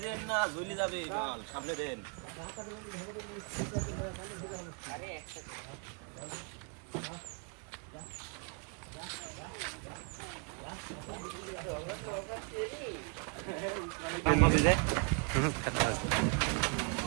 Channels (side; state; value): left; quieter; 37.4 dB